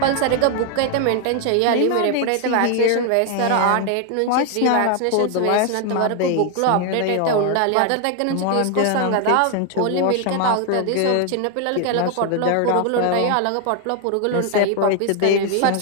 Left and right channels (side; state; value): both; different; correlation 0.00